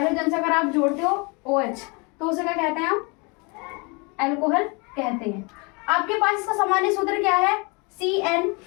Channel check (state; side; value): quieter; right; 30.4 dB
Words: से अगर आप जोड़ते हो OH, तो उसे क्या कहते हैं? हम अल्कोहल कहते हैं। आपके पास इसका सामान्य सूत्र क्या है?